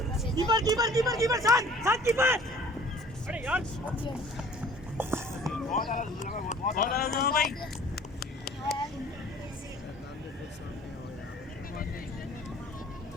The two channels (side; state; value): both; normal; correlation 0.49